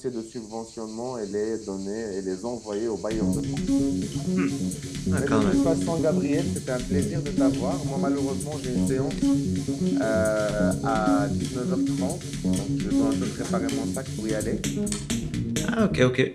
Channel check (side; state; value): both; identical; correlation 1.00